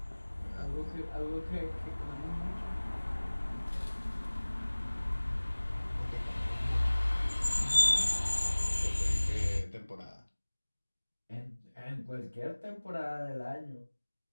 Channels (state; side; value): inverted; both; correlation -1.00